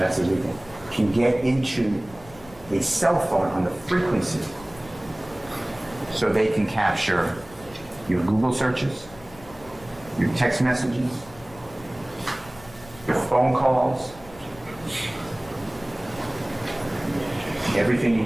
illegal, can get into a cell phone on the frequency so they can capture your Google searches, your text messages, your phone calls, everything you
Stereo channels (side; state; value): left; noise; rumble, 21 dB below the sound